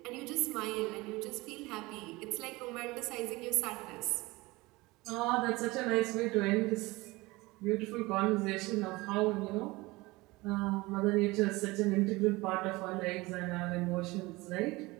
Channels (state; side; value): quieter; left; 22.0 dB